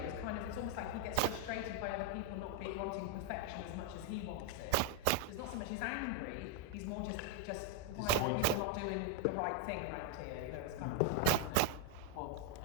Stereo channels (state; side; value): different; both; correlation 0.01